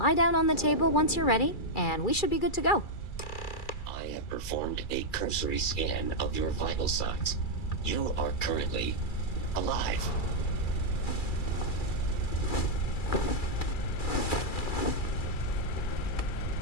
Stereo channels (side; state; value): right; late; 2.3 ms